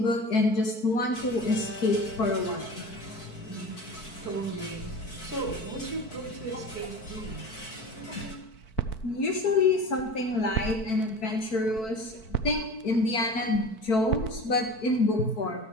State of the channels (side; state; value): right; late; 4.5 ms